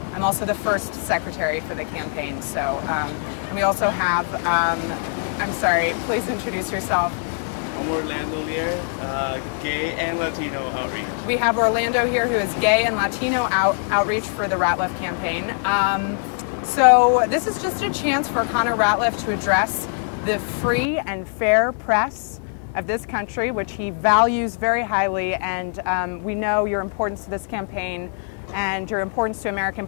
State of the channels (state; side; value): silent; right; 61 dB below the other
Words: also the first secretary for the campaign. So, and we also have, I'm sorry, please introduce yourself. I'm Orlando here, gay and Latino outreach. We have Orlando here, who is gay and Latino outreach for the Ratliff campaign. So this is just a chance for Connor Ratliff to address the free and fair press of this country, which he values very highly, and we know your importance to this campaign and your importance to American